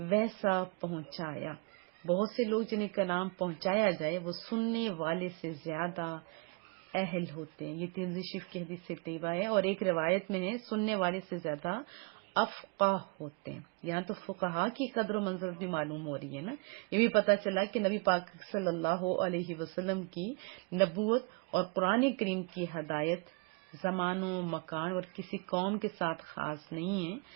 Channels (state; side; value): quieter; left; 30.9 dB